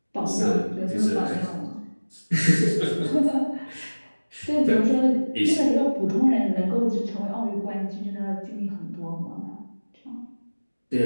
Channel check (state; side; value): inverted; both; correlation -1.00